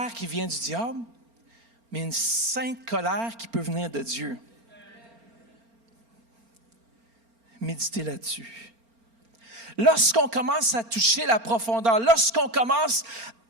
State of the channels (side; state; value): left; late; 4.4 ms